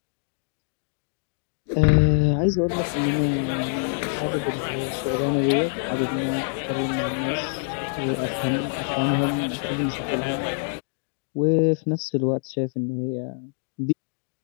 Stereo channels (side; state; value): right; silent; digital silence